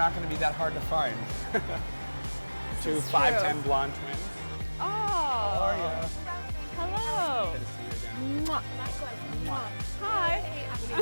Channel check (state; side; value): inverted; both; correlation -1.00